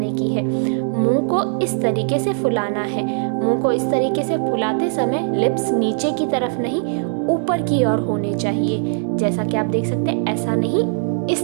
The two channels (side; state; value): left; silent; digital silence